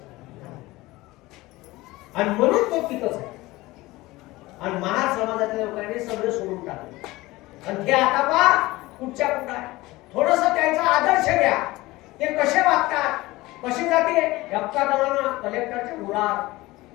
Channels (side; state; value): right; quieter; 19.7 dB